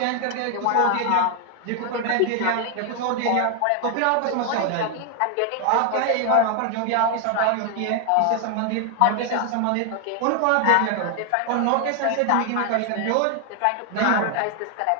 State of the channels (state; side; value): different; both; correlation 0.00